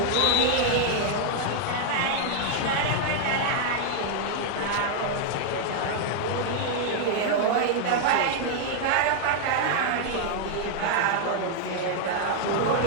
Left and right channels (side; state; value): both; different; correlation 0.00